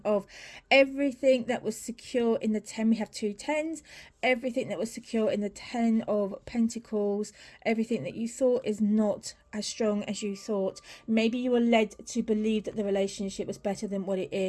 of everything that was secure in the 10. We have two tens. Everything that was secure in the 10 of Pentacles. Everything that you thought is not as strong as you thought. Maybe you were led to believe that the relationship was better than what it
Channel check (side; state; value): both; identical; correlation 1.00